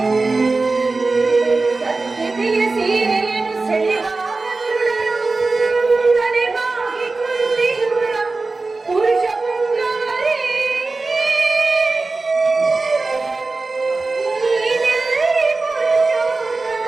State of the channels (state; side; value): quieter; left; 3.6 dB